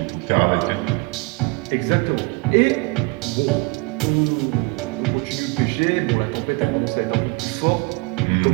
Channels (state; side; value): quieter; left; 26.8 dB